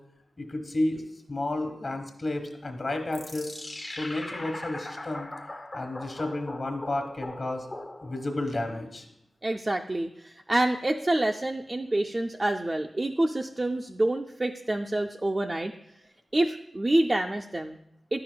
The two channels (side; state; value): both; normal; correlation 0.97